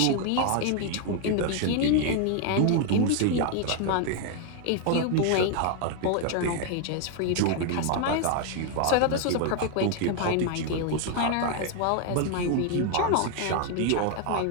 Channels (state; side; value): different; both; correlation 0.00